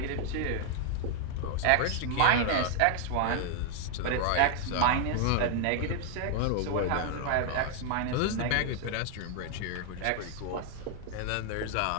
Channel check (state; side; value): different; both; correlation 0.00